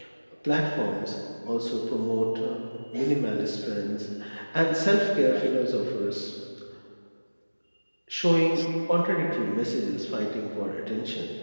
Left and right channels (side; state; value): both; inverted; correlation -1.00